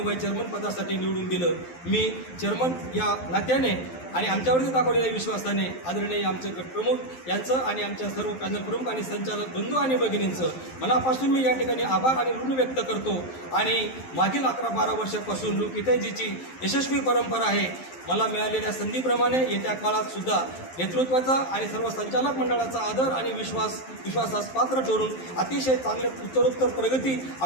चेअरमन पदासाठी निवडून दिलं। मी चेअरमन या नात्याने आणि आमच्यावरती दाखवलेल्या विश्वासाने आदरणीय आमचे गटप्रमुख यांचं आणि आमच्या सर्व पॅनल प्रमुख आणि संचालक बंधू आणि भगिनींचं मनापासून मी या ठिकाणी आभार आणि ऋण व्यक्त करतो आणि मागील 11-12 वर्षापासून लोकहितैषीची यशस्वी परंपरा आहे। मला मिळालेल्या संधीप्रमाणे येत्या काळात सुद्धा नेतृत्वाचा आणि सर्व संचालक मंडळाचा आदर आणि विश्वासास पात्र ठरून अतिशय चांगले उत्तरोत्तर प्रगती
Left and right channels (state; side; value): late; right; 12 ms